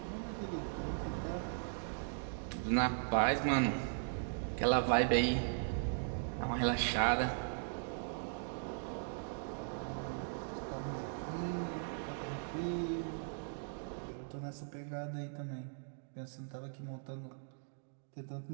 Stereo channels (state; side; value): silent; left; digital silence